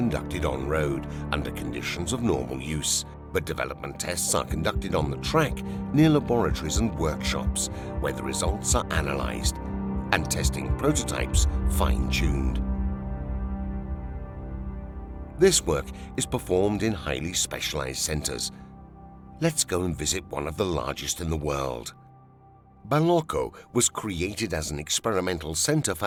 on-road under conditions of normal use, but development tests are conducted on the track near laboratories and workshops where the results are analyzed and testing prototypes fine-tuned. This work is performed in highly specialized centers. Let's go and visit one of the largest in the world. Ballocco was created as an experimental center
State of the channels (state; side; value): identical; both; correlation 1.00